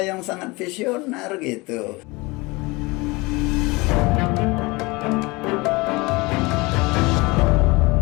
yang sangat visioner gitu.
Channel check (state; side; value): quieter; right; 24.4 dB